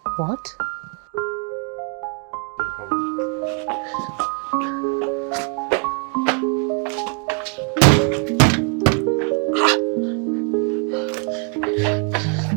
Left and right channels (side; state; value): left; quieter; 39.9 dB